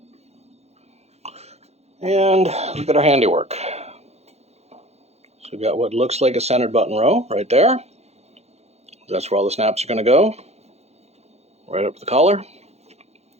And look at our handiwork. So we've got what looks like a centered button row right there. That's where all the snaps are going to go. Right up the collar.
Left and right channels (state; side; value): late; left; 0.31 ms